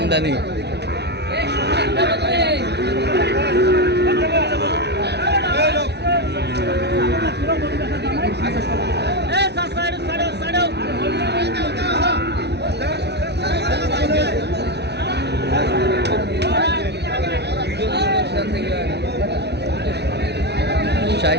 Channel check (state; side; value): late; left; 0.49 ms